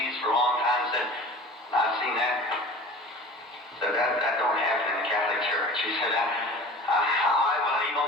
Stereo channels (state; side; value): normal; both; correlation 0.40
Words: for a long time and said, I've seen that. Said that don't happen in the Catholic Church. He said, I believe